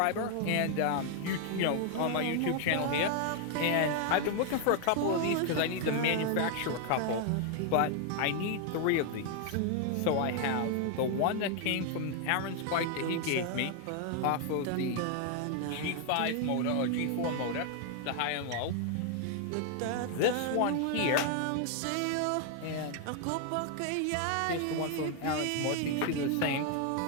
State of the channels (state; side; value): different; both; correlation 0.00